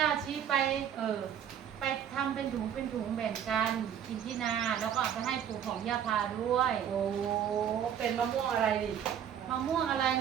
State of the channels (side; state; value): left; quieter; 9.1 dB